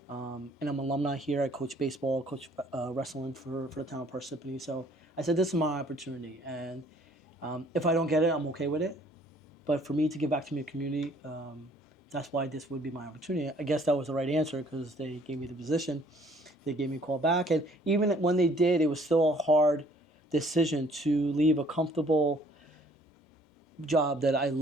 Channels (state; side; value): normal; both; correlation 0.59